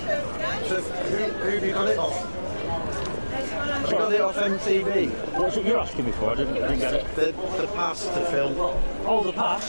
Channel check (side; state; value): both; inverted; correlation -1.00